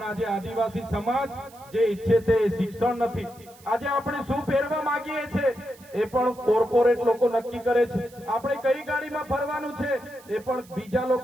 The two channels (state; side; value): noise; right; hiss, 24 dB below the sound